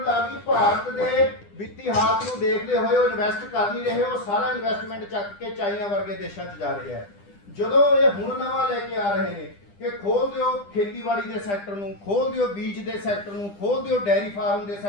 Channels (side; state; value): right; late; 10 ms